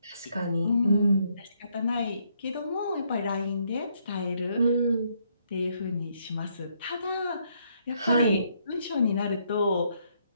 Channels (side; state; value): both; inverted; correlation -0.72